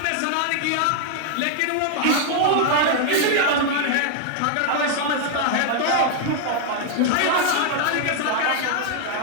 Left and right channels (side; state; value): both; different; correlation 0.00